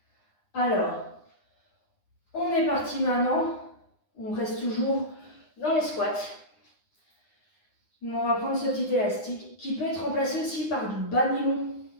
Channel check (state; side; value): late; right; 9.7 ms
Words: Alors, on est parti maintenant. On reste toujours dans les squats. On va prendre ce petit élastique qui peut être remplacé aussi par du bas nylon.